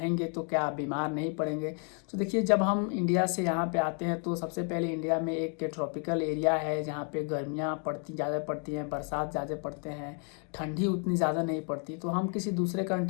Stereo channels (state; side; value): quieter; right; 38.6 dB